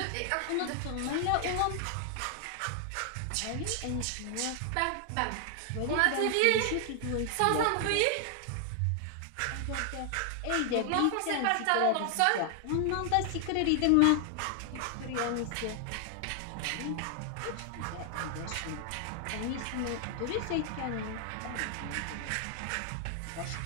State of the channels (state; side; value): different; both; correlation 0.00